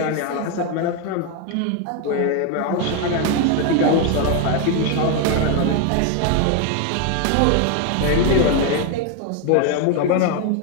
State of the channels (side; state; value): both; different; correlation 0.01